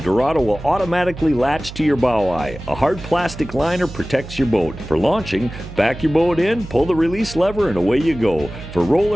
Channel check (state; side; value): noise; right; hum, 13 dB below the sound